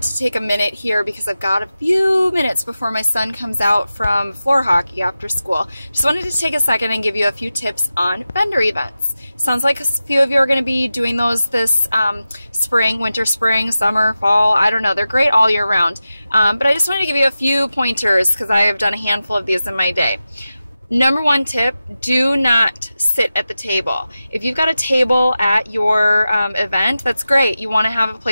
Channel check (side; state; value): both; inverted; correlation -0.93